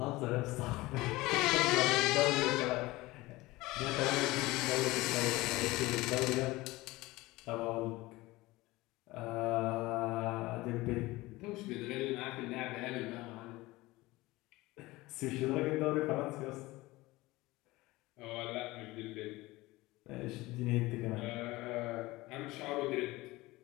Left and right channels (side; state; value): right; quieter; 20.0 dB